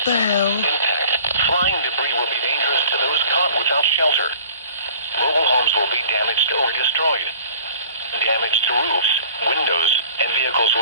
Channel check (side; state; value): both; inverted; correlation -0.47